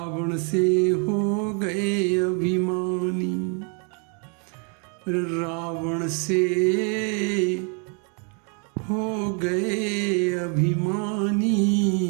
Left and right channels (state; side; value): quieter; left; 38.1 dB